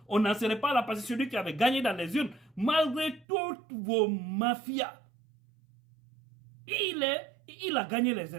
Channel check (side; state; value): left; drops out; at 3.2 s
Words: on n'en serait pas là parce que celui qui avait gagné dans les urnes, malgré toutes vos mafias, il a gagné les